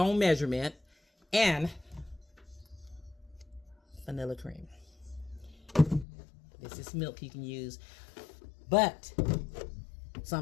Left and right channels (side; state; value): right; drops out; at 6.1 s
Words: own measurement, and vanilla cream. This is milk you can use, but